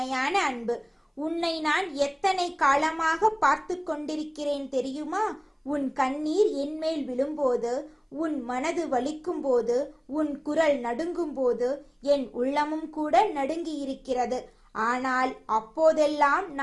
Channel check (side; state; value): both; identical; correlation 1.00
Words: அன்பு. உன்னை நான் எத்தனை காலமாக பார்த்து கொண்டிருக்கிறேன் தெரியுமா? உன் கண்ணீர் என்மேல் விழும்போது, உன் மனது வலிக்கும் போது, உன் குரல் நடுங்கும் போது என் உள்ளமும் கூட நடுங்கி இருக்கிறது. ஆனால் அப்போதெல்லாம்